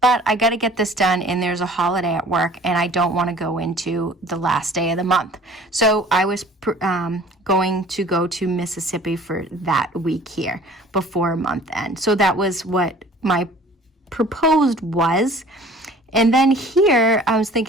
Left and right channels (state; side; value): normal; both; correlation 0.49